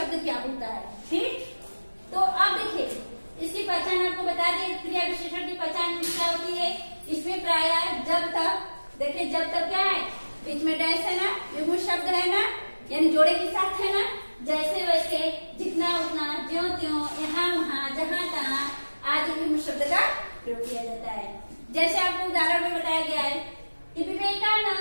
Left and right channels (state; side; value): inverted; both; correlation -1.00